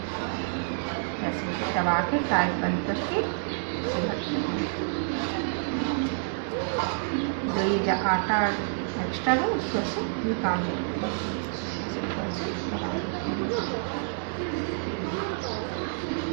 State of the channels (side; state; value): left; silent; digital silence